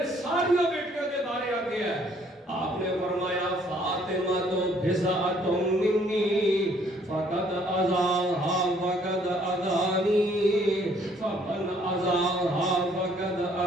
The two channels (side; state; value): both; normal; correlation 0.63